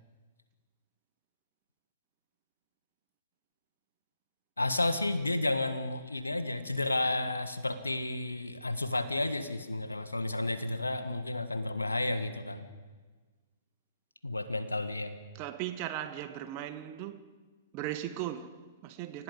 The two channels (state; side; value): inverted; both; correlation -0.82